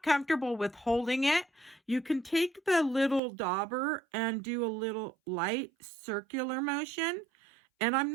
comfortable with holding it, you can take the little dauber and do a little light circular motion. And I'm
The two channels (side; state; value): left; drops out; at 3.2 s